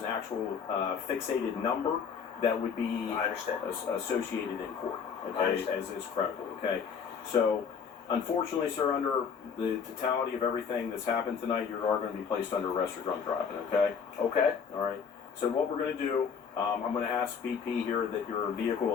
actual fixated number that would be I understand. Associated in court. I Okay, understand. as is credible. Okay. So, unfortunately, sir, under the totality of everything that's happened tonight, you are going to be placed under arrest for drunk driving. Okay. Okay. All right. So what we're going to do, I'm going to ask BP here that your vehicle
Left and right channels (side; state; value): right; quieter; 6.6 dB